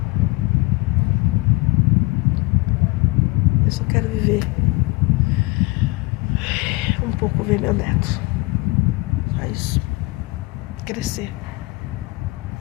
Eu só quero viver um pouco, ver meu neto. Só isso. Crescer.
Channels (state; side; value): quieter; right; 24.0 dB